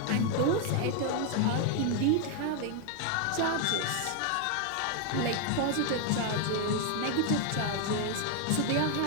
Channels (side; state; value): both; different; correlation 0.01